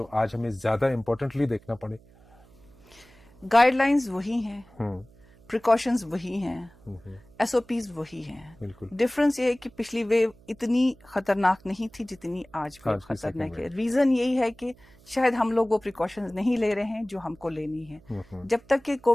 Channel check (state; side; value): noise; right; hum, 27 dB below the sound